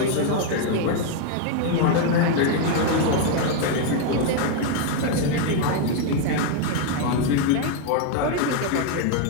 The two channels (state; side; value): different; both; correlation 0.00